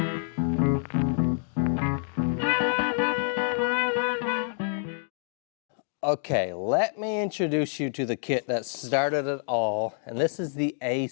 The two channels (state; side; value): silent; right; digital silence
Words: Okay, let me introduce you to the kit that started it all, and this is the